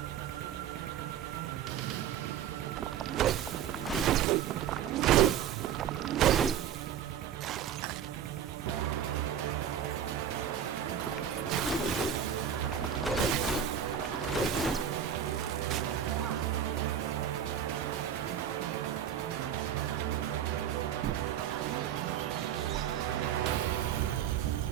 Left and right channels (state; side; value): quieter; left; 9.3 dB